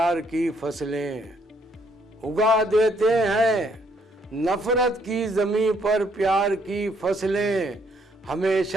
की फसलें, उगा देते हैं नफरत की ज़मीं पर प्यार की फसलें,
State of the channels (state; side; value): normal; both; correlation 0.69